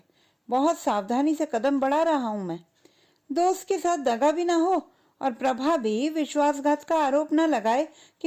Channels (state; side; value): identical; both; correlation 1.00